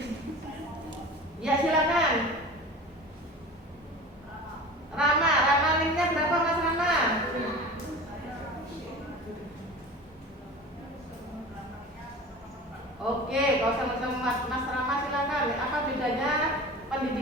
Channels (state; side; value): normal; both; correlation 0.36